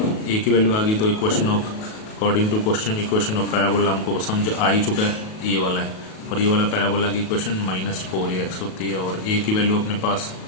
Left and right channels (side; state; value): right; late; 37 ms